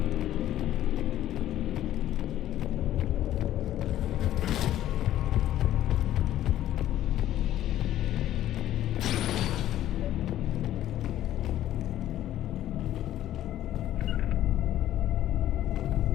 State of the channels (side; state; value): right; quieter; 12.8 dB